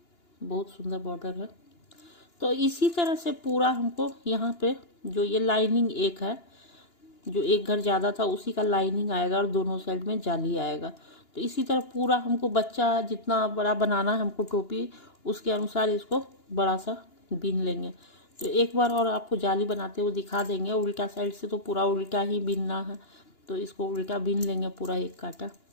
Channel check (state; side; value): late; right; 2.9 ms